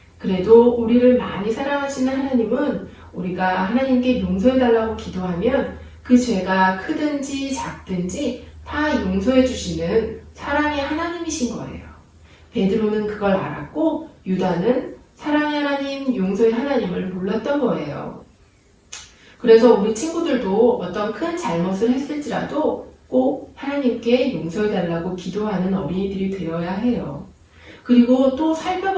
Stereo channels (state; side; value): identical; both; correlation 1.00